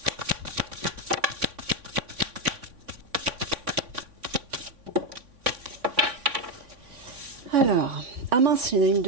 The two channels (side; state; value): left; late; 3.5 ms